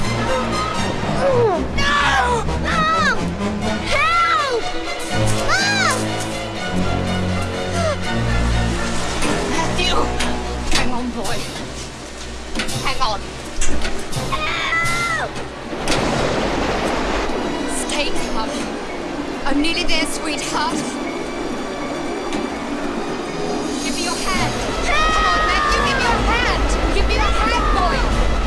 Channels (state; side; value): identical; both; correlation 1.00